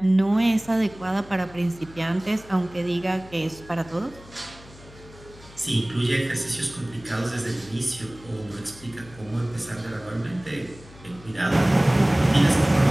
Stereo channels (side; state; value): left; noise; hum, 21 dB below the sound